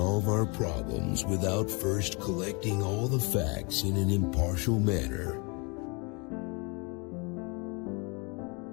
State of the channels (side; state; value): right; quieter; 31.0 dB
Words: our problems without first collecting all the facts in an impartial manner.